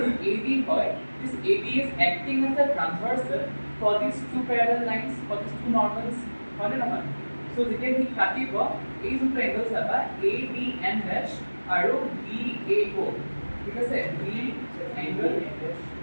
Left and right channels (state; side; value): inverted; both; correlation -1.00